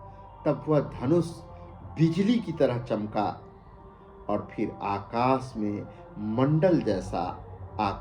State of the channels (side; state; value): both; identical; correlation 1.00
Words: तब वह धनुष बिजली की तरह चमका और फिर आकाश में मंडल जैसा